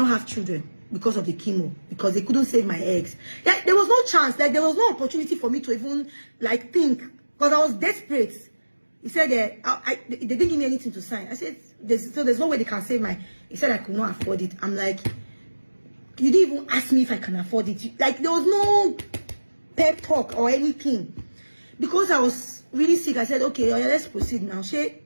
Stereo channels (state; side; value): inverted; both; correlation -1.00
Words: have children because of the chemo, because they couldn't save my eggs. Like, there was no chance, like there was no opportunity for me to even like think, because I was desperate. He said they didn't give me anything to sign. I said, there's no way they can save my. He said I could not afford it. I'm like, you didn't even ask me if I can afford it. Like, there was no pep talk or anything. Because I was really sick, I said, okay, let's proceed now.